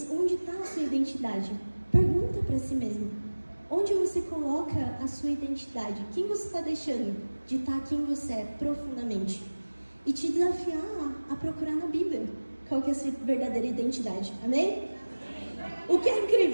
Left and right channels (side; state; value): both; inverted; correlation -1.00